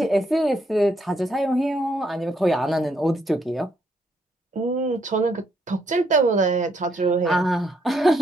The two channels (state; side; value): normal; both; correlation 0.74